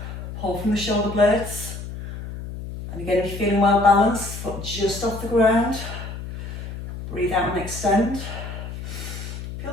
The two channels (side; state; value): left; noise; hum, 9 dB below the sound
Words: pull from the shoulder blades. And again, if you're feeling well balanced, foot just off the ground. Breathe out and extend.